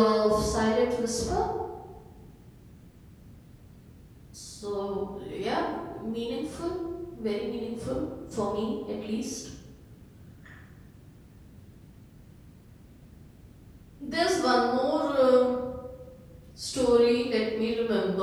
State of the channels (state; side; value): identical; both; correlation 1.00